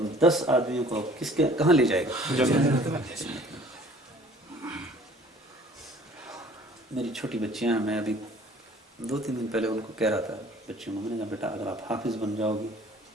10 آدمیوں کو کہاں لے جائے گا؟ میری چھوٹی بچیاں ہیں، میں ابھی 2-3 دن پہلے ان کو کہہ رہا تھا بچیوں کو، میں نے کہا بیٹا اگر آپ حافظ بن جاؤ گی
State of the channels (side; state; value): both; normal; correlation 0.52